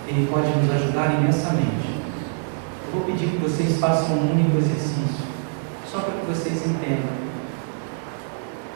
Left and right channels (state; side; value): silent; left; 63 dB below the other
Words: Ele pode nos ajudar imensamente. Eu vou pedir que vocês façam um único exercício, só para que vocês entendam